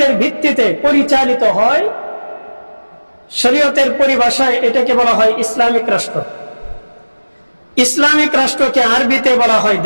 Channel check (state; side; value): inverted; both; correlation -1.00